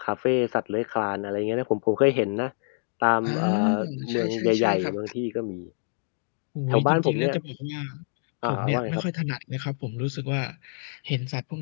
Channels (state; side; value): silent; right; digital silence